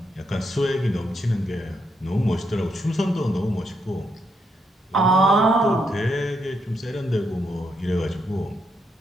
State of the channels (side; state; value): both; normal; correlation 0.79